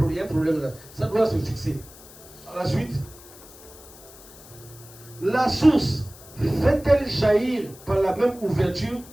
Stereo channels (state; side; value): noise; left; hiss, 20 dB below the sound